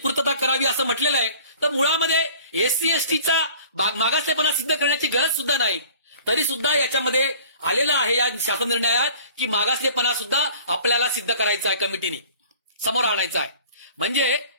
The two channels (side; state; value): both; inverted; correlation -0.48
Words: करावी असं म्हटलेलं आहे, तर मुळामध्ये एससी एसटीचा मागासलेपणा सिद्ध करण्याची गरज सुद्धा नाही. तरी सुद्धा याच्यामध्ये आलेलं आहे या शासन निर्णयात की मागासलेपणा सुद्धा आपल्याला सिद्ध करायचा आहे, कमिटीने समोर आणायचा आहे. म्हणजे